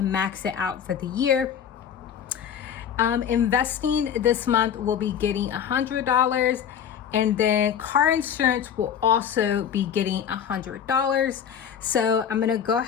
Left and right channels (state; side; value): quieter; right; 8.5 dB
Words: max it out for the year. Investing this month will be getting $100, and then car insurance will also be getting $100. So I'm gonna go